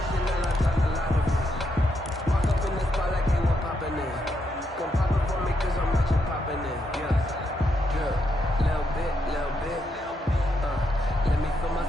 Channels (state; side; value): normal; both; correlation 0.80